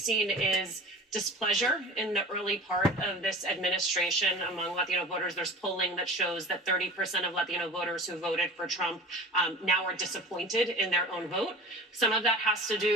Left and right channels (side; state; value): both; normal; correlation 0.38